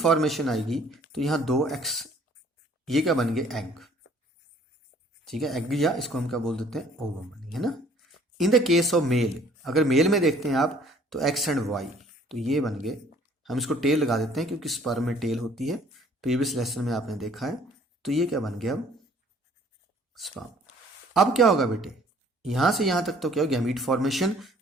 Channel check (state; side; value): normal; both; correlation 0.57